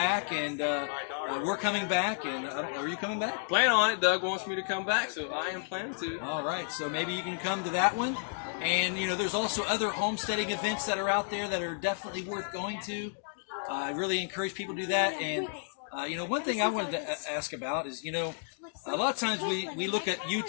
and we're coming back. And are you coming back? Plan on it. Doug wants me to come back, so I am planning to. All right, so maybe you can come to that one. And, there's also other homesteading events that are out there that are definitely worth going to. I really encourage people to do that. And, one thing I wanted to ask about is, a lot of times we look at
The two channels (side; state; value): right; silent; digital silence